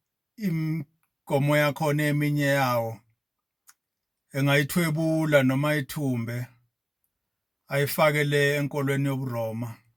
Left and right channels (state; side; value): identical; both; correlation 1.00